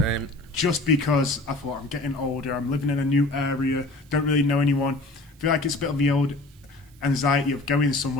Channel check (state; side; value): noise; right; hiss, 30 dB below the sound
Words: Just because I thought I'm getting older, I'm living in a new area, don't really know anyone. I feel like it's a bit of the old anxiety of going